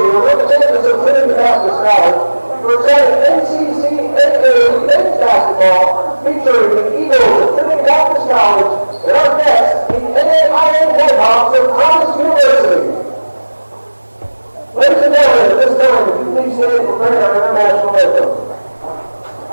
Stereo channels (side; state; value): both; inverted; correlation -1.00